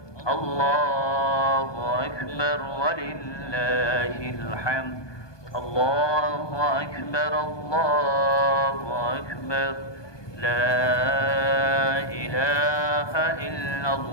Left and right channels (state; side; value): late; right; 1.2 ms